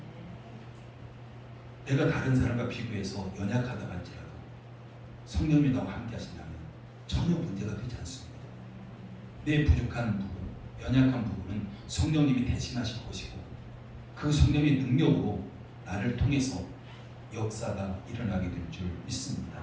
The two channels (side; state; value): both; identical; correlation 1.00